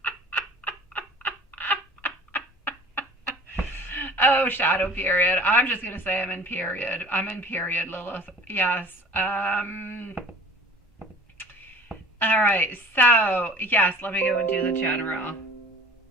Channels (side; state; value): both; normal; correlation 0.45